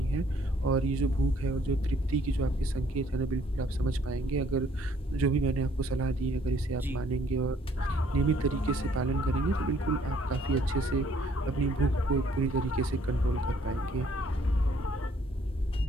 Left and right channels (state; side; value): normal; both; correlation 0.63